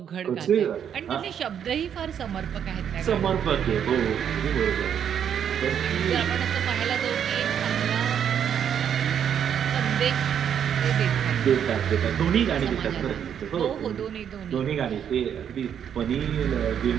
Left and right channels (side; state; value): left; quieter; 8.7 dB